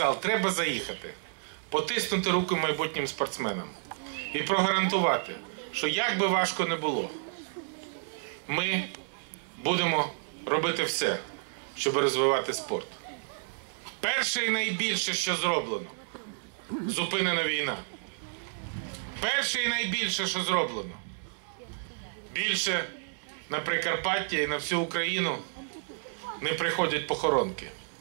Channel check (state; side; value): silent; left; digital silence